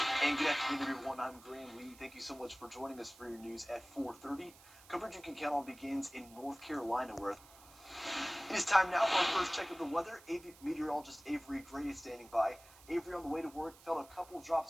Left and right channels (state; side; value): noise; right; hiss, 22 dB below the sound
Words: And good afternoon, everyone. I'm Graham Lee. Thank you so much for joining us for your news at 4:30. Coverage you can count on begins in North Carolina, where it is time now for our first check of the weather. Meteorologist Avery Gray is standing by. Avery, on the way to work, felt a couple drops